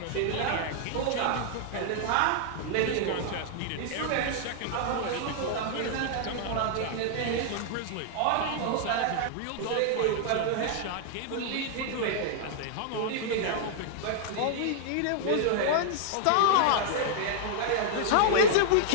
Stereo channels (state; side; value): different; both; correlation -0.01